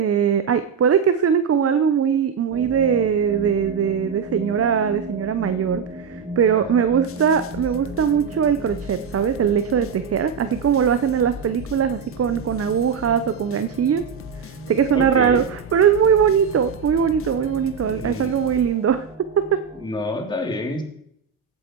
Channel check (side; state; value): left; quieter; 6.8 dB